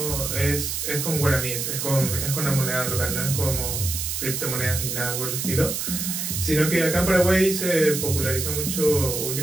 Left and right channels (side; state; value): right; noise; hiss, 3 dB below the sound